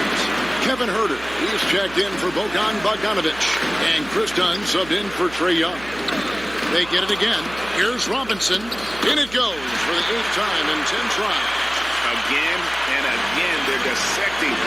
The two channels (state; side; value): noise; right; hum, 18 dB below the sound